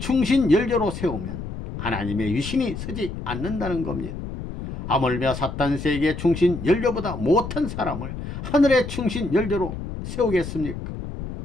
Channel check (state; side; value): noise; left; rumble, 8 dB below the sound